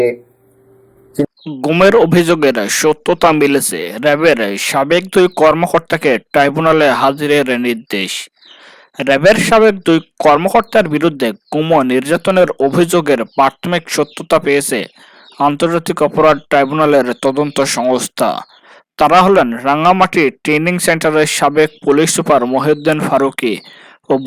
গুমের অভিযোগের সত্যতা মিলেছে। র্যাবের সাবেক 2 কর্মকর্তাকে ট্রাইব্যুনালে হাজিরের নির্দেশ। র্যাবের সাবেক 2 কর্মকর্তার বিরুদ্ধে গুম ও নির্যাতনের অভিযোগের প্রাথমিক সত্যতা পেয়েছে আন্তর্জাতিক অপরাধ ট্রাইব্যুনালের তদন্ত সংস্থা। তারা হলেন রাঙ্গামাটি ট্রেনিং সেন্টারের সাবেক পুলিশ সুপার মহিউদ্দিন ফারুকী ও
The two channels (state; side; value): identical; both; correlation 1.00